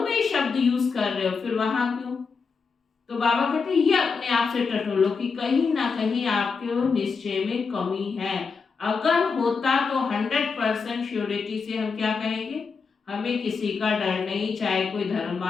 में ही शब्द यूज कर रहे हो, फिर वहां क्यों? तो बाबा कहते हैं ये अपने आप से टटोलो कि कहीं ना कहीं आपके निश्चय में कमी है। अगर होता तो 100% श्योरिटी से हम क्या कहेंगे, हमें किसी का डर नहीं, चाहे कोई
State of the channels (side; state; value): right; quieter; 5.1 dB